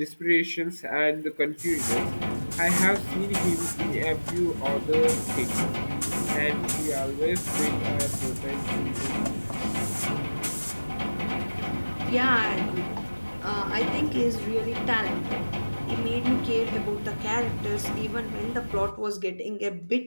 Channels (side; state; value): both; inverted; correlation -1.00